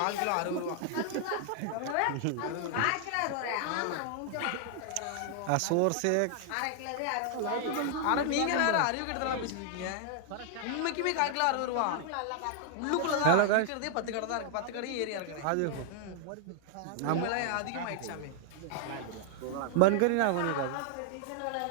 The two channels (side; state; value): both; different; correlation 0.00